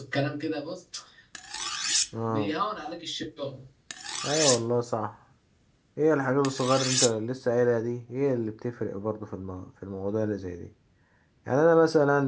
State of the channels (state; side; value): identical; both; correlation 1.00